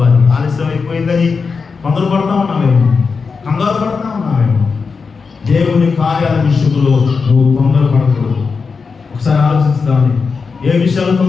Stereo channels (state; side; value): quieter; right; 5.0 dB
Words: ఆలస్యం అయిపోయిందని తొందరపడతా ఉన్నామేమో, కంగారు పడతా ఉన్నామేమో. దేవుని కార్యాల విషయంలో నువ్వు తొందరపడకూడదు. ఒకసారి ఆలోచిస్తామని, ఏ విషయాలు